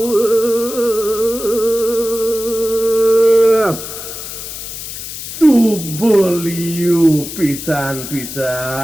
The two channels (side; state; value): left; noise; hiss, 9 dB below the sound